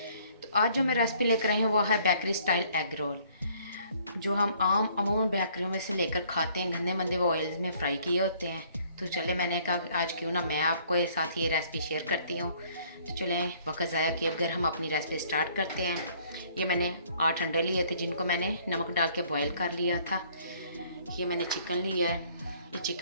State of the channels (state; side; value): inverted; both; correlation -0.61